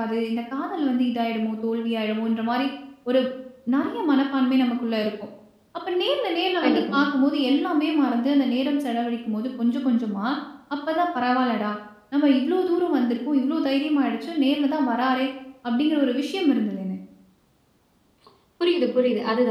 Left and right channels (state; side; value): identical; both; correlation 1.00